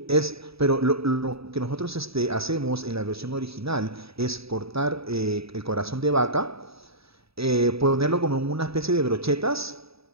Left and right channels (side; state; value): left; late; 0.77 ms